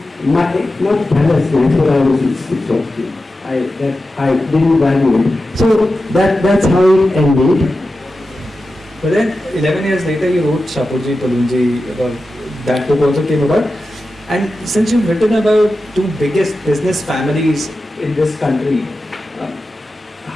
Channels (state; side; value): normal; both; correlation 0.92